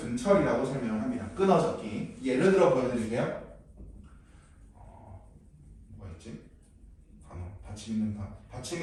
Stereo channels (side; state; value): both; identical; correlation 1.00